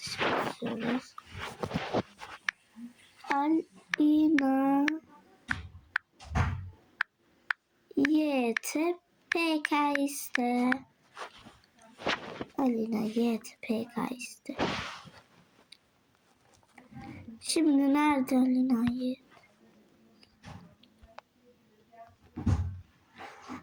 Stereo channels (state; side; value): identical; both; correlation 1.00